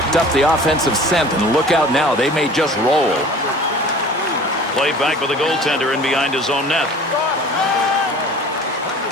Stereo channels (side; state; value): both; normal; correlation 0.44